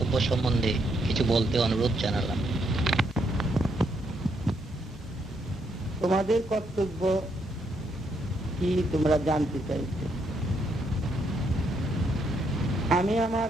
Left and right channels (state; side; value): normal; both; correlation 0.76